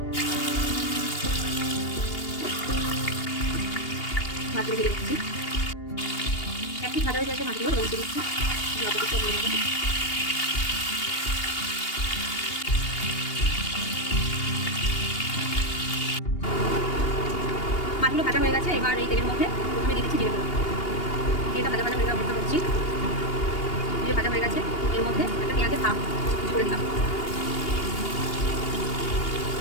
মাছগুলো দিয়ে দিচ্ছি, একটু ভাজা হয়ে গেছে মাছগুলো রোল দিয়ে দিচ্ছি। লবণটা দিয়ে দেবো। মাছগুলো ভাজা হয়ে গেছে, এবার এই তেলের মধ্যে প্রথমে দিয়ে দিচ্ছি জিরে গুঁড়ো। জিরেটা ভাজা হয়ে অপেক্ষা করছি। জিরে ভাজা হয়ে গেছে, এর মধ্যে একটা পেঁয়াজের হাফ করে দিলাম।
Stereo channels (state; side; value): late; right; 2.8 ms